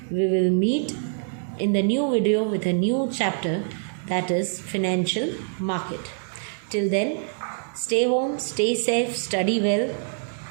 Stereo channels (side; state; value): left; silent; digital silence